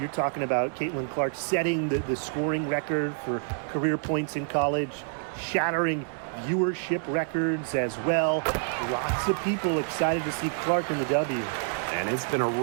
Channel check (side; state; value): left; silent; 60 dB below the other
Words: talking about Caitlin Clark setting the scoring record for career points in college, shattering viewership records as well. Lots of people excited to see Clark in the W. And it's been a